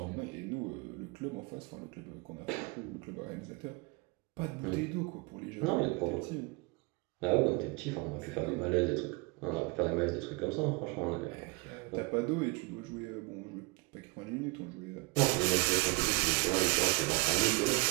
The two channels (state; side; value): quieter; left; 26.8 dB